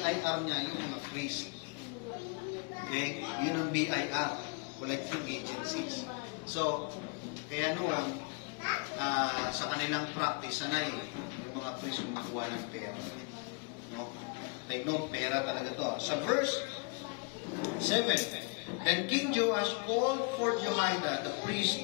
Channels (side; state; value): right; quieter; 33.6 dB